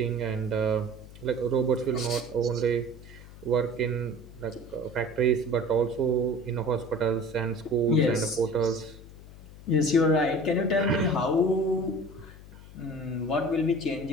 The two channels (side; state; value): left; noise; hum, 18 dB below the sound